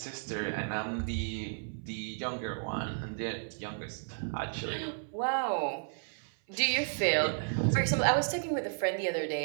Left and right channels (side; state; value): left; silent; 55 dB below the other